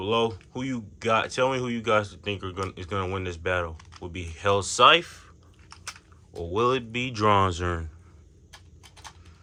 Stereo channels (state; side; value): identical; both; correlation 1.00